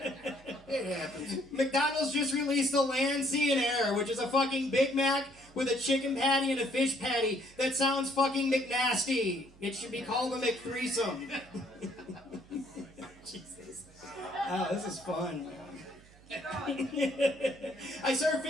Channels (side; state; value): right; noise; hum, 25 dB below the sound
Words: It happens. McDonald's just released the Land, Sea, and Air, which is a fucking Big Mac with a chicken patty and a fish patty that sounds fucking McNasty. It should be called a McThreesome. Jesus. Oh, this is fun. I served